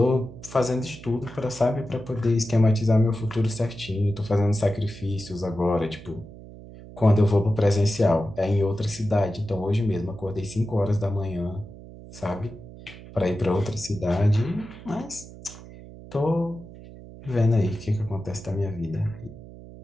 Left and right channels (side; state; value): right; noise; hum, 17 dB below the sound